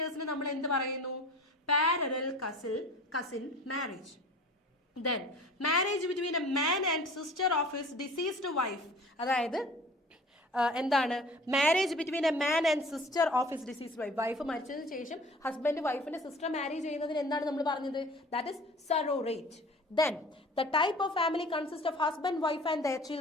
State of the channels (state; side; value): normal; both; correlation 0.44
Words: നമ്മൾ എന്ത് പറയുന്നു? Parallel cousin marriage. Then marriage between a man and sister of his deceased wife. അതായത് എന്താണ് marriage between a man and sister of his deceased wife. Wife മരിച്ചതിന് ശേഷം husband വൈഫിന്റെ sister marriage ചെയ്യുന്നതിന് എന്താണ് നമ്മൾ പറഞ്ഞത്? That is sororate. Then the type of family consist of husband wife and their